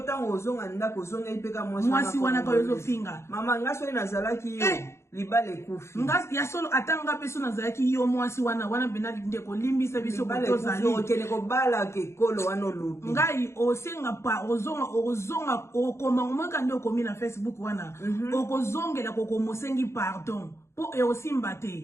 tango ozonga ndako ozonga ipeka mwasi wana ko yozo finga mama ngaso ina zalaki yo libale kufi ngas ya solo atanga peso na zalaki yo mwasi wana bena ndeko limbisa biso ko tozali okene ko bala ke kolo wana lobi ngai osenga pa ozonga okoma ngomaka ndio komi na Facebook wana okozongela kokomosengi pardon po e aussi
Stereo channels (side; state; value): right; late; 0.13 ms